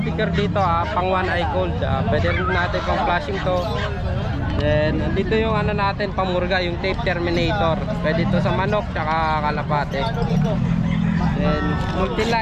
dito, pang one eye cold. Pwede rin natin pang flashing to. Then dito yung ano natin, pamurga, yung tape terminator. Pwede to sa manok tsaka kalapate. Then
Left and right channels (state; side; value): identical; both; correlation 1.00